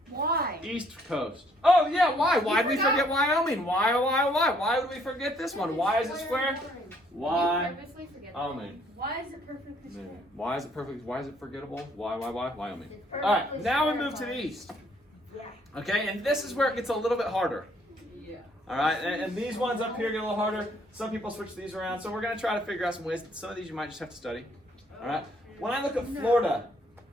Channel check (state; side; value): normal; both; correlation 0.65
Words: Why? East Coast. Oh, yeah. Why? Why did we forget Wyoming? Why? Why would we forget this one? Why is it square? Wyoming. Why is it perfectly square? Why is it perfect? Why is it forgettable? Why? Wyoming. All right, now we move to the east. Okay, and this is where it gets a little bit harder. Yeah. All right, and these ones up here get a little harder. Some people switch these around, so we're going to try to figure out some ways. Some of these you might just have to study. All right. When I look at Florida,